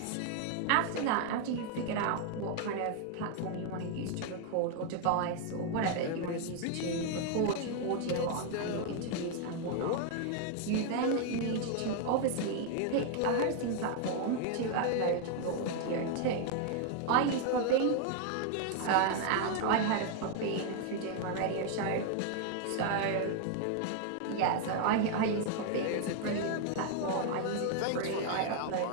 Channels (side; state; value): both; different; correlation 0.00